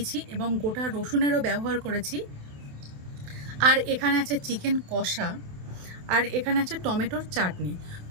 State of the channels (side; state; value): left; late; 28 ms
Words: এবং গোটা রসুনেরও ব্যবহার করেছি। আর এখানে আছে চিকেন কষা, আর এখানে আছে টমেটোর চাটনি।